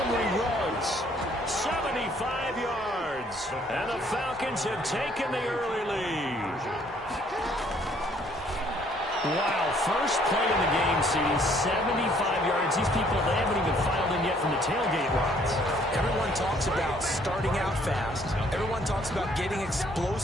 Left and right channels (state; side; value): normal; both; correlation 0.63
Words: runs 75 yards. And the Falcons have taken the early lead. Wow, first play in the game, CD, 75 yards. These people, they haven't even filed in yet from the tailgate lines. Everyone talks about starting out fast. Everyone talks about getting